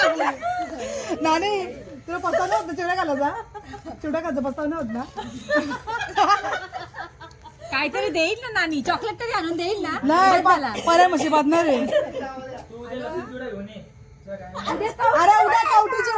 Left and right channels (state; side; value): identical; both; correlation 1.00